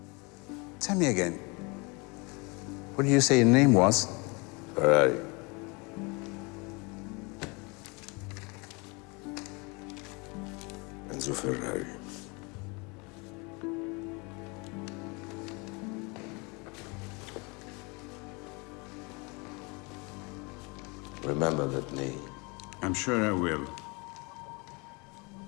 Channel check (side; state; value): right; quieter; 28.9 dB